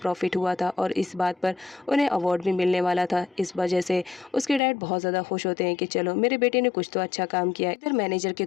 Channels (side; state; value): right; drops out; at 4.6 s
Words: हुआ था और इस बात पर उन्हें अवार्ड भी मिलने वाला था। इस वजह से उसके डैड बहुत ज़्यादा खुश होते हैं कि चलो मेरे बेटे ने कुछ तो अच्छा काम किया। इधर मैनेजर के